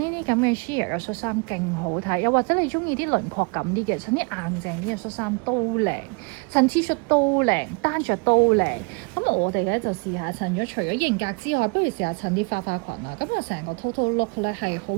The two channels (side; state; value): left; quieter; 32.7 dB